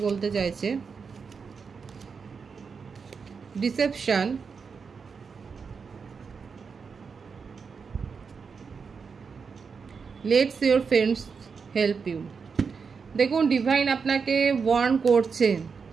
বলতে চাইছে। Deception, let's your friends help you. দেখুন ডিভাইন আপনাকে ওয়ার্ন করছেন,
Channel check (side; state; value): left; quieter; 5.6 dB